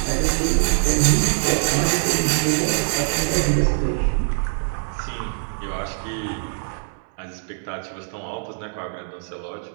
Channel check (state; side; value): silent; left; 63 dB below the other